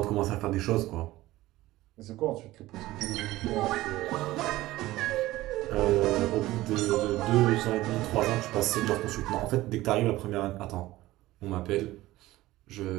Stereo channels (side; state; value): left; quieter; 17.0 dB